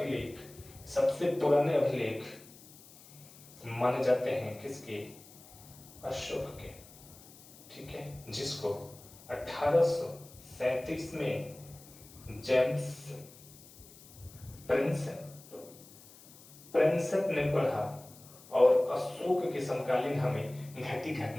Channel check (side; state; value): left; noise; hiss, 21 dB below the sound